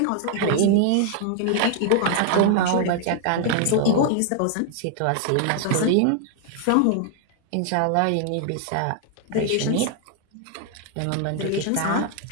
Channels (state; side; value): different; both; correlation 0.00